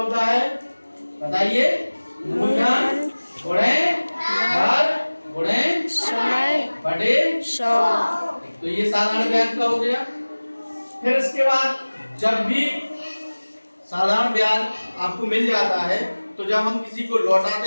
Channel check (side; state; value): both; inverted; correlation -1.00